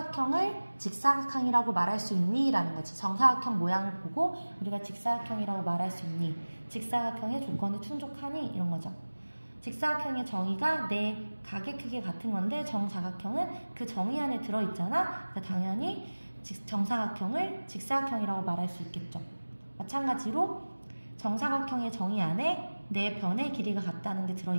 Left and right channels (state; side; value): inverted; both; correlation -1.00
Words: 직사각형이라고 말할 수 있니? 라는 거지. 정사각형 모양을 보고 우리가 직사각형이라고 말할 수 있니? 직사각형의 조건이 충족하니? 이런 거죠. 직사각형의 정의가 내 각의 크기가 같은 건데 정사각형은 그 정의 안에 들어있잖아. 그러니까 당연히 정사각형을 직사각형이라고 말할 수 있겠죠. 마찬가지로 정사각형의 정의 안에 네 변의 길이가 같다는 게